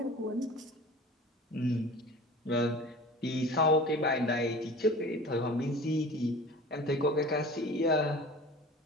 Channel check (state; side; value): normal; both; correlation 0.40